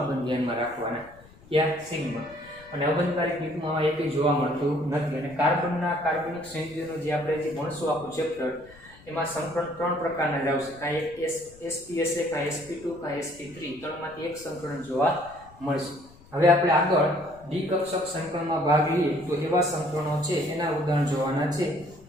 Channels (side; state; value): left; noise; rumble, 24 dB below the sound